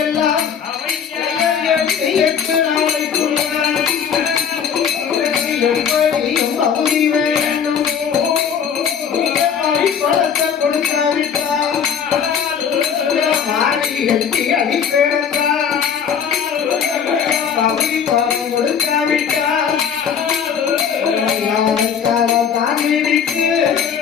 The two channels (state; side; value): quieter; right; 7.5 dB